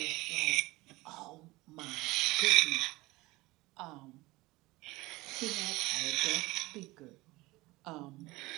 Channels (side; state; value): left; quieter; 20.8 dB